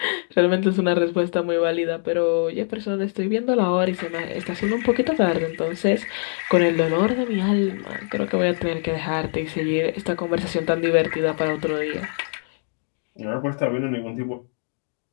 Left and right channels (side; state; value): right; silent; 62 dB below the other